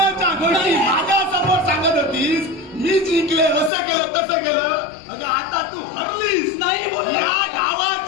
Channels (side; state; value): right; drops out; at 3.7 s